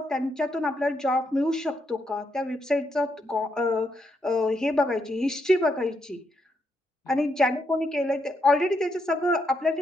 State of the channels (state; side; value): normal; both; correlation 0.79